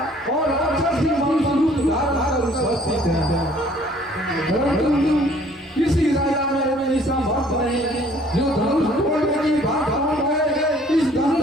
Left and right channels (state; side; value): normal; both; correlation 0.57